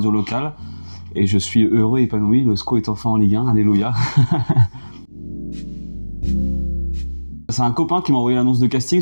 locale. Et je suis heureux et épanoui, le SCO est enfin en Ligue 1, alléluia. C'est un copain qui m'a envoyé l'annonce de casting,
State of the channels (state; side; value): inverted; both; correlation -1.00